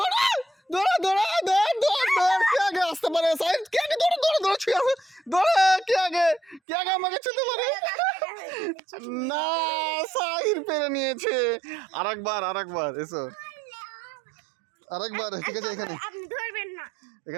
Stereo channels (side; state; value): left; drops out; at 6.6 s